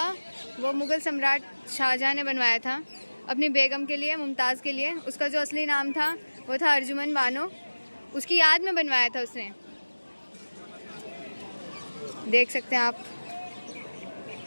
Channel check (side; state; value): both; inverted; correlation -1.00